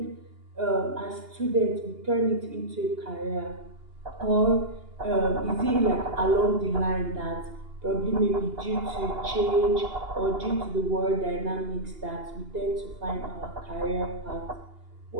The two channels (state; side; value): late; left; 2.8 ms